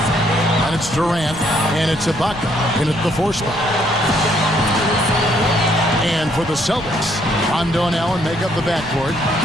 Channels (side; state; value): left; noise; rumble, 16 dB below the sound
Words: And it's Durant, and it's Ibaka in at the 4 spot. And for the Celtics, Rondo and Allen make up the backcourt.